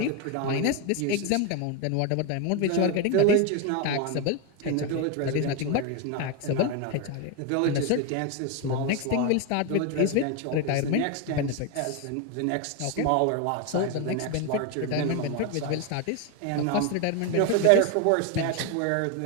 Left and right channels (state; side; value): different; both; correlation 0.02